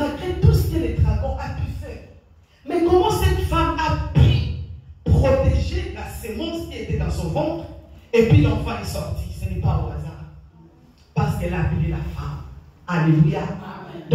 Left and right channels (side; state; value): both; identical; correlation 1.00